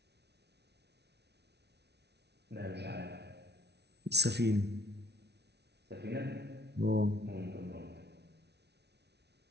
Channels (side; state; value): left; late; 0.49 ms